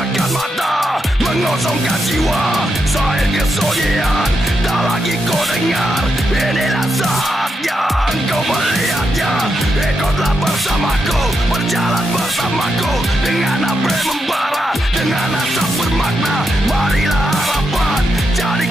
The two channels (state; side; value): normal; both; correlation 0.84